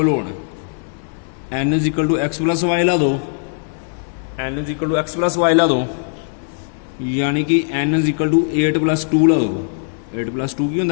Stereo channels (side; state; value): right; silent; digital silence